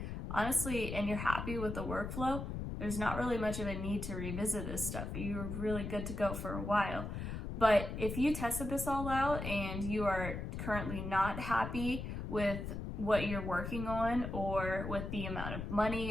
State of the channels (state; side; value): noise; left; rumble, 5 dB below the sound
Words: honestly, and you're happy with the workflow, there's not really much of a need to revisit this stuff. You're really good to go for a while. But if you tested this all out and you are currently not happy with what you're working on, or with the amount of money